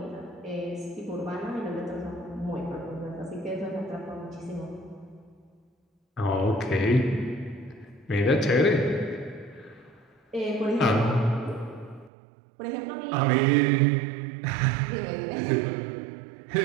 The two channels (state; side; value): drops out; left; at 12.1 s